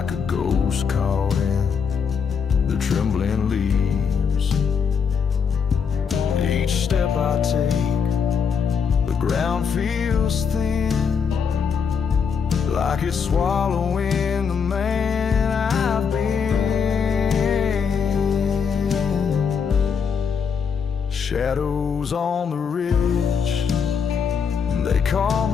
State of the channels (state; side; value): quieter; right; 6.4 dB